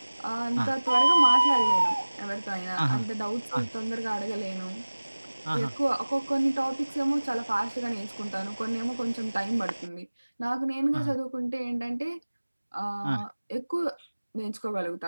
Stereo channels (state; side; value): inverted; both; correlation -1.00